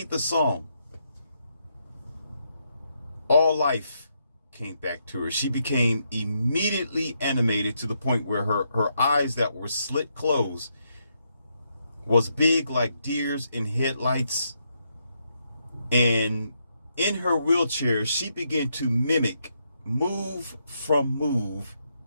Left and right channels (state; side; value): inverted; both; correlation -0.79